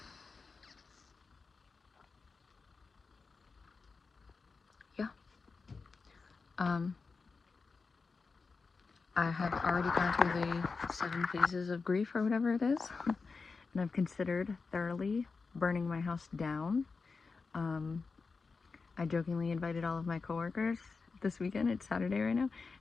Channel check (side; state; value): right; quieter; 4.5 dB